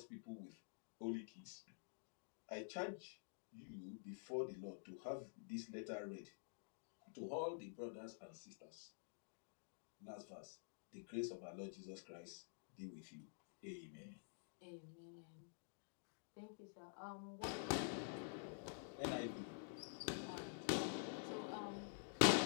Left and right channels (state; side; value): silent; right; digital silence